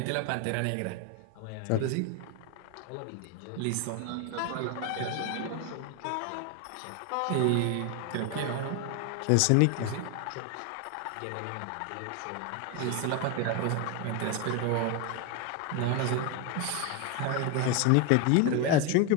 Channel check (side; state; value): both; different; correlation 0.01